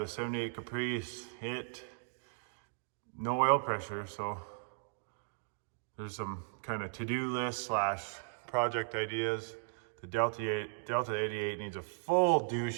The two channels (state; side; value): silent; left; digital silence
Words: 78 Caprice, no oil pressure, so there's some kind of to-do list slash project ideas. The Delta 88 needs a full